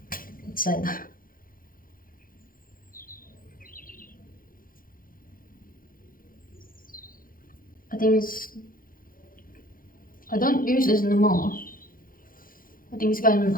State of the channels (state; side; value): late; right; 0.41 ms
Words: it said. I think it's, I don't use this anymore. I think it's gotten